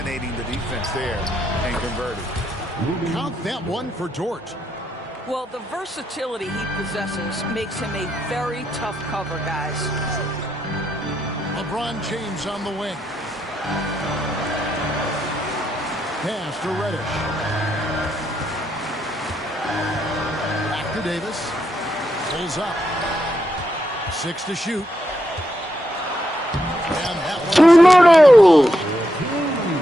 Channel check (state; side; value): normal; both; correlation 0.81